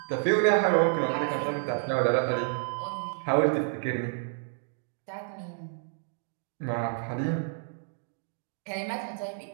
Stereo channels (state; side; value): silent; left; 58 dB below the other